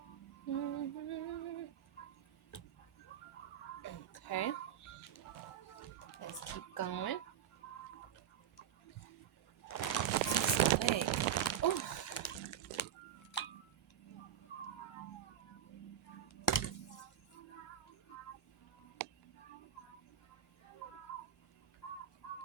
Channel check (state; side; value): quieter; left; 9.6 dB